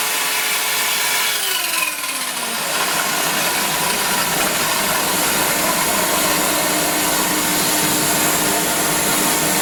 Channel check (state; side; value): identical; both; correlation 1.00